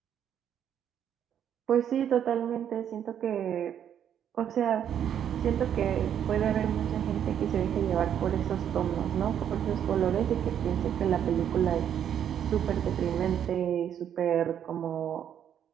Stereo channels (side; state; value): left; quieter; 9.3 dB